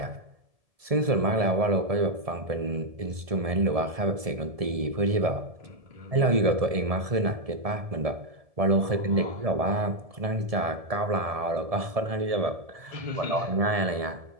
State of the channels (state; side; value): late; left; 1.7 ms